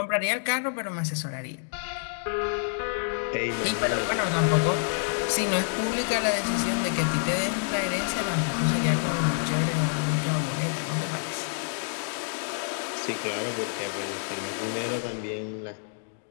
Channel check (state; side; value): silent; right; digital silence